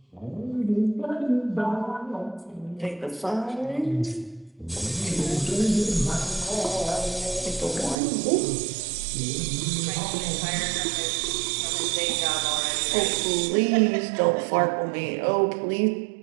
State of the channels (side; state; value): left; drops out; at 8.0 s